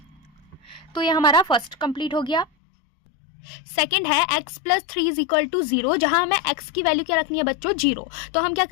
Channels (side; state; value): right; drops out; at 2.5 s